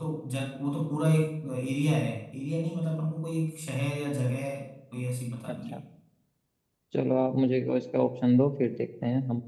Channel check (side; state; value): both; identical; correlation 1.00